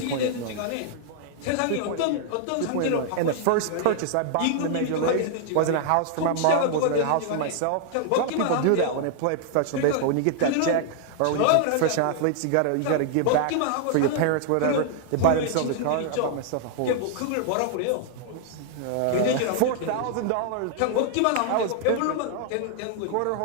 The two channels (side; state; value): both; different; correlation 0.00